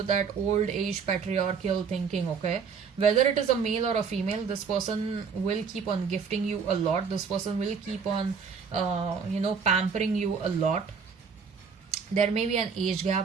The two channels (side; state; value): left; quieter; 5.9 dB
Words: that old age patriarchal thinking. Okay, whether it is a male or a female, this person will keep on gifting you a lot, this person will keep on pampering you a lot. There may be an age